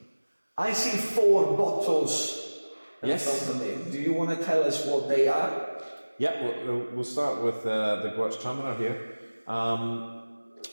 I see 4 bottles. Yes. Do you want to tell us what they are? Yeah, we'll start with the Gewürztraminer here.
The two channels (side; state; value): both; inverted; correlation -1.00